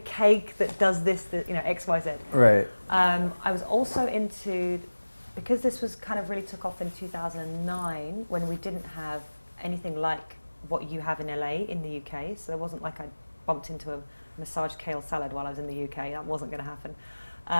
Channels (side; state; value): both; inverted; correlation -1.00